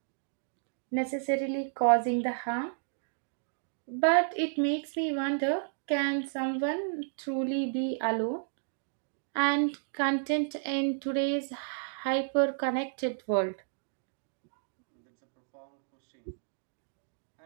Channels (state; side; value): silent; left; digital silence